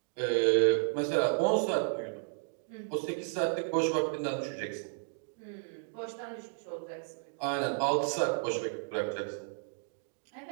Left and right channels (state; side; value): silent; left; digital silence